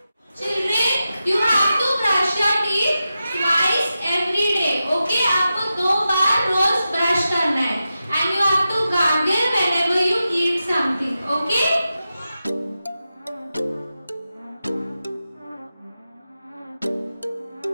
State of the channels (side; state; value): both; inverted; correlation -0.91